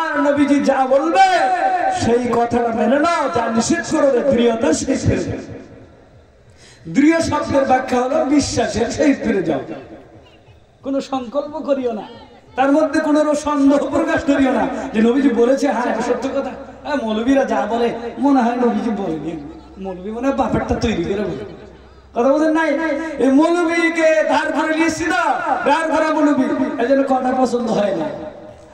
নবীজি যা বলবে সেই কথাটা মেনে নাও, যা নিষেধ করবে দৃঢ়তা সেই ফিরে যাও। দৃঢ় শব্দের ব্যাখ্যা হলো বিশ্বাসের সেই ফিরে যাও। কোনো সংকল্প করিও না, তার মধ্যে কোনো সন্দেহ প্রকাশ করিও না যে নবীজি বলেছে, হ্যাঁ এটা সত্য কথা। মৌলবীরা যা বলে মনে হয় নবীজি বলেনি, মৌলবী মনে হয় বাপেরটা তৈরি করে বলে। কথা বলেন নাই, এই মৌলবীকে ধার করে নিয়েছি না, ধার করা মৌলবী, এই জন্য কথা পছন্দ হয় না।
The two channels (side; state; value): both; identical; correlation 1.00